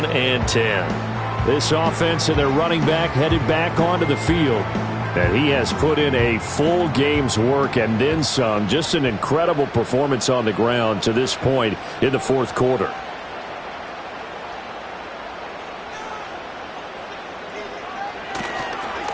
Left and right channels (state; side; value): identical; both; correlation 1.00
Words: and 10. This offense and their running back headed back onto the field. And he has put in a full game's work and then some. Just an incredible performance on the ground to this point in the fourth quarter.